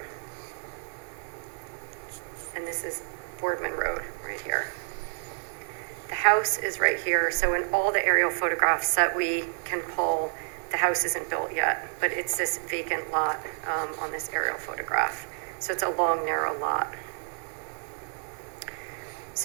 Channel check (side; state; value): left; silent; 58 dB below the other